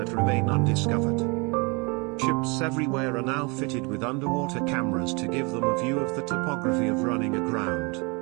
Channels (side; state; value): left; quieter; 29.6 dB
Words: remain undiscovered. Ships everywhere are now fitted with underwater cameras to give them a view of the topography of running aground.